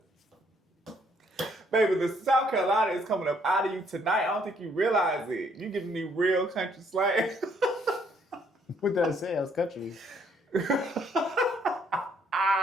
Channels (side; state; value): both; normal; correlation 0.67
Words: Baby, the South Carolina is coming up out of you tonight. I don't think you realize it. You giving me real country slang. What did I say? I was country.